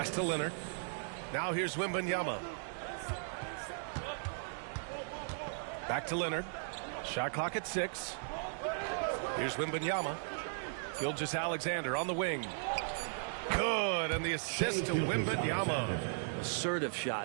to Leonard. Now here's Wembanyama. Back to Leonard. Shot clock at 6. Here's Wembanyama. Gilgeous-Alexander on the wing. Good, and the assist to Wembanyama. Assertive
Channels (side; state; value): left; silent; digital silence